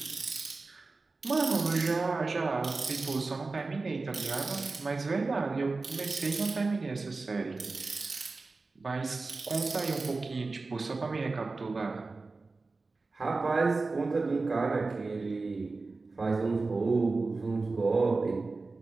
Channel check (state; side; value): quieter; left; 3.7 dB